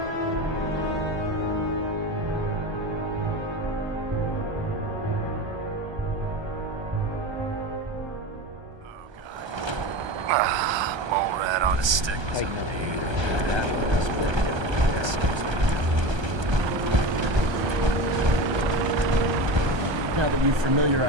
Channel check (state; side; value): late; left; 1.3 ms